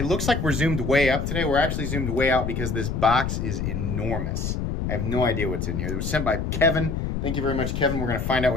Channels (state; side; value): noise; left; rumble, 2 dB below the sound